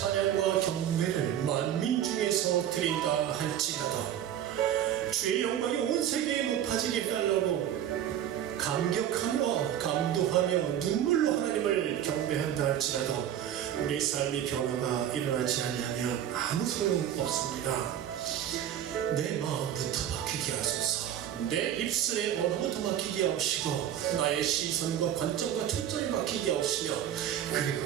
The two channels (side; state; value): left; quieter; 10.6 dB